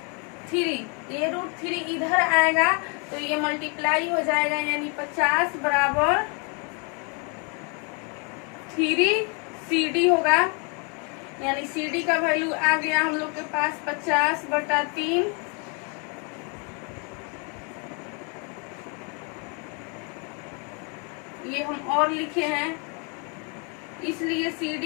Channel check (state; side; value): quieter; right; 35.5 dB